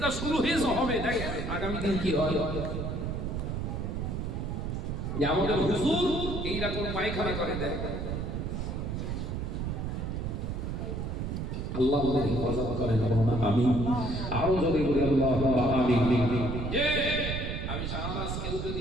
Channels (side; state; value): right; noise; rumble, 3 dB below the sound